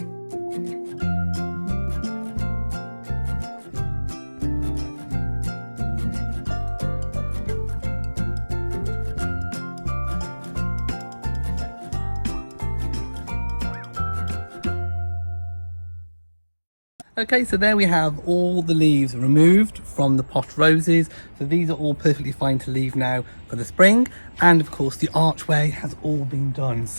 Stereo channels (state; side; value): inverted; both; correlation -1.00